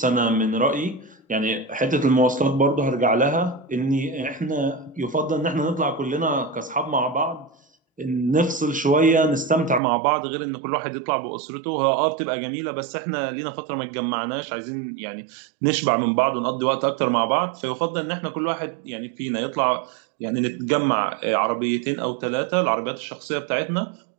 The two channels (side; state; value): left; drops out; at 9.8 s